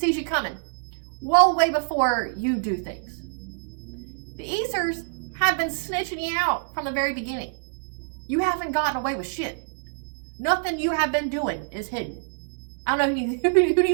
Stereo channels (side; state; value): left; silent; digital silence